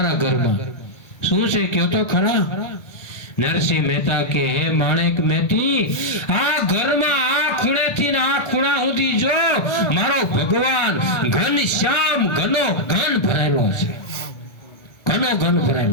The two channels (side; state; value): right; late; 1.4 ms